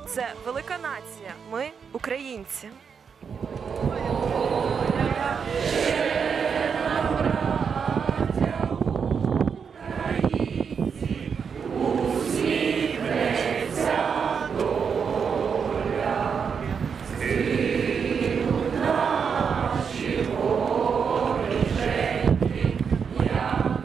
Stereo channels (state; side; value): quieter; left; 6.4 dB